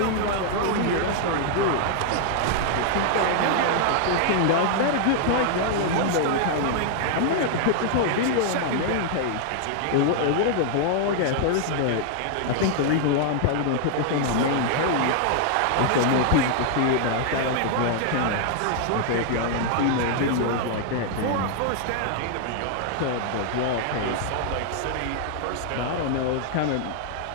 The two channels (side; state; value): both; different; correlation -0.01